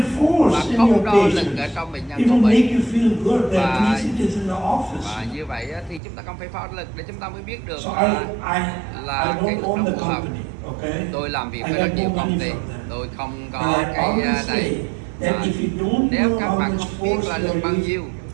force in không your đo lực patient. ở trong bệnh nhân It của will mình. make you feel good that Và- at least it is in the office. Và như vậy á, thì chúng ta không phải đo lực để chúng ta mới biết được So là I là cái don't lực own nó the phù hợp. company, okay? Tôi làm việc I với get rất no nhiều công money ty, from them. tôi không But có I cái always này. say that if you don't Nếu know các how bạn much không biết force là you lực are bao using, nhiêu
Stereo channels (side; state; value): left; drops out; at 6.0 s